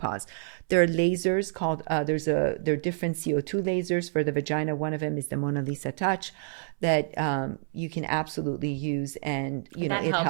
There are lasers called there are different CO2 lasers for the vagina. One of them is the Mona Lisa Touch that you can absolutely use, and that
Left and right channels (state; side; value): silent; left; 59 dB below the other